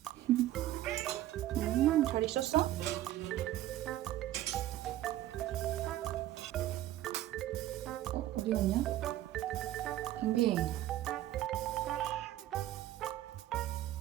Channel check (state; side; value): quieter; left; 13.9 dB